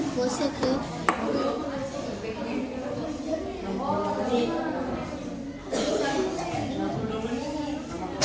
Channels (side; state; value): both; identical; correlation 1.00